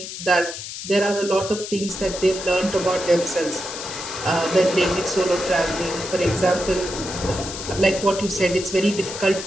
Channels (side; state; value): left; noise; hiss, 9 dB below the sound